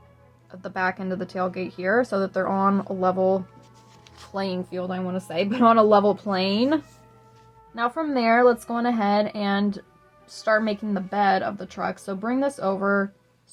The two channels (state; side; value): identical; both; correlation 1.00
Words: of the back end of the tailgate here, so that they're on a level playing field, I want to say, but on a level plane. Now from there, let's go on ahead and start making the bed of the truck. So bring this over